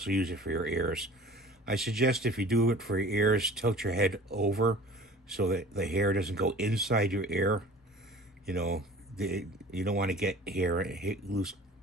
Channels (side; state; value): both; normal; correlation 0.44